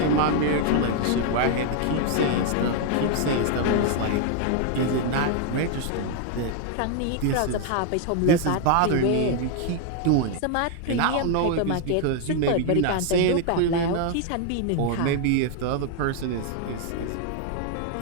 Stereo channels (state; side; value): different; both; correlation 0.00